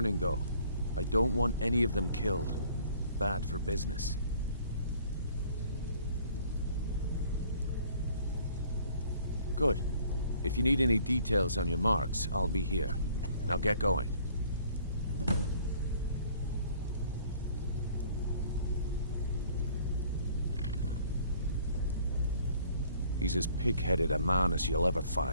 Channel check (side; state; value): both; inverted; correlation -0.57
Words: though. I don't want any of them killed. Bad for business. Good. If you need any details on your marks, I'll be here. Now get going. He's as pig-headed a man as you'll ever